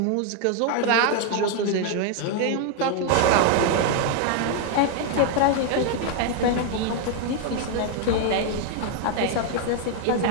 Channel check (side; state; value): both; different; correlation 0.00